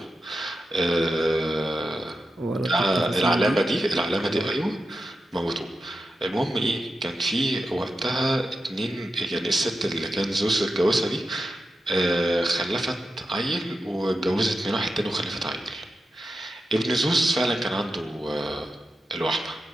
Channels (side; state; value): both; normal; correlation 0.90